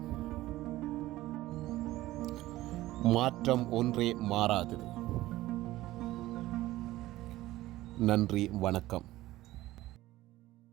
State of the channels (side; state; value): left; quieter; 16.5 dB